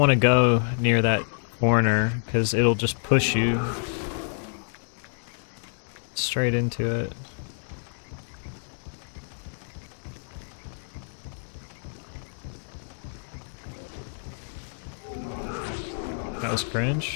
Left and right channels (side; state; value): right; silent; digital silence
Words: to go near that corner, because it'll just push you straight into it. That was